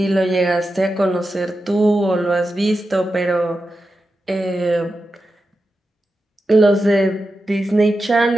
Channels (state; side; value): normal; both; correlation 0.90